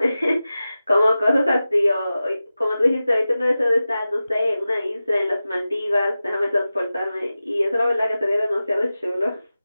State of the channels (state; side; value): inverted; both; correlation -0.95